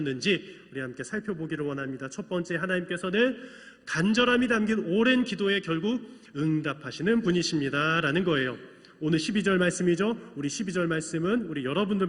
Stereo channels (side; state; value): both; identical; correlation 1.00